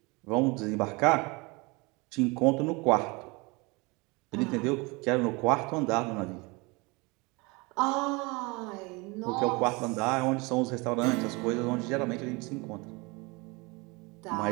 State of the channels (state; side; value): quieter; left; 26.6 dB